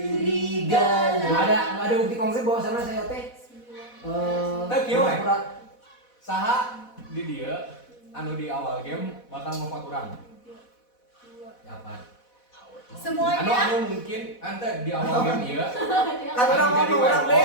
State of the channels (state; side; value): late; right; 4.1 ms